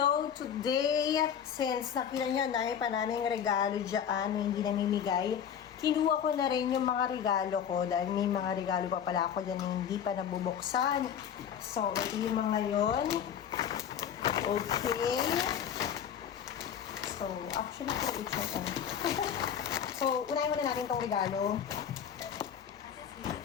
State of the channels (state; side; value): quieter; right; 8.6 dB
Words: today, since nakita nyo na pa naming regalo dyan na hindi namimigay, kinuha ko na rin yung mga regalo ko dahil may mga regalo pa pala ako dyan na hindi pa nabubuksan. So, ito yung mga yun. Okay. So, actually, ito it's So, unahin muna natin itong regalo